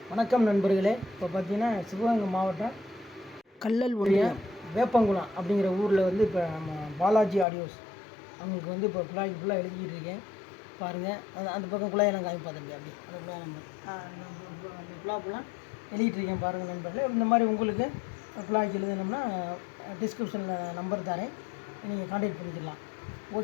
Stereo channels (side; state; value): right; drops out; at 7.5 s